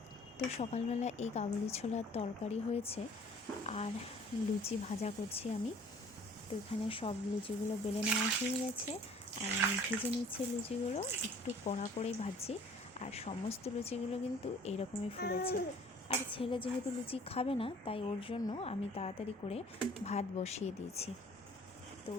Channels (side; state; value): both; normal; correlation 0.52